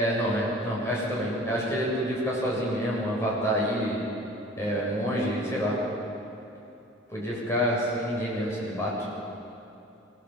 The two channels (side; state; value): both; normal; correlation 0.44